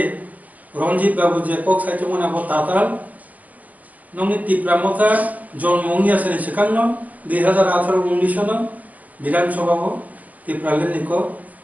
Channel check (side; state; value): left; late; 0.076 ms